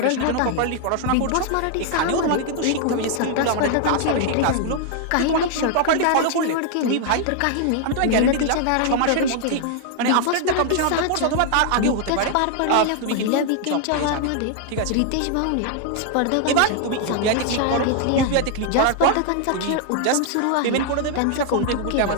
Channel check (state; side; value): different; both; correlation 0.00